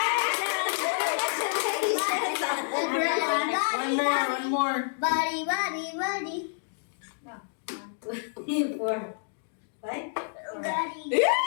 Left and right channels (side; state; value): right; silent; digital silence